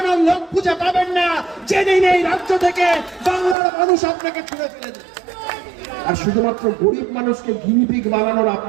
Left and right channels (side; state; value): left; drops out; at 3.6 s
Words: লোক খুঁজে পাবেন না। জেনে নেই রাজ্য থেকে বাংলার মানুষ আপনাকে ছুঁড়ে ফেলে দেবে। আর শুধুমাত্র গরিব মানুষকে গিনিপিগ বানানোর